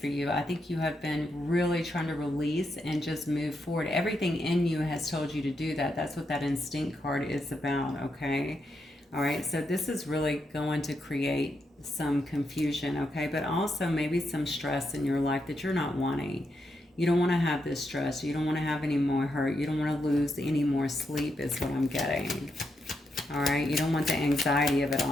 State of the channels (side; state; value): both; normal; correlation 0.82